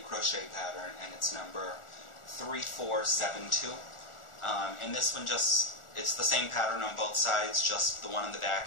crochet pattern, and it's number 3472. And this one just, it's the same pattern on both sides, just the one in the back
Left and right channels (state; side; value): late; right; 1.4 ms